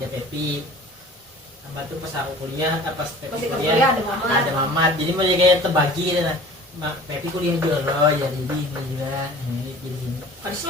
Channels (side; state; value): both; normal; correlation 0.45